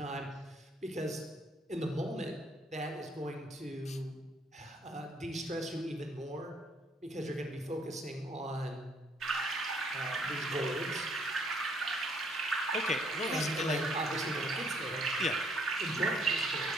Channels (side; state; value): both; normal; correlation 0.65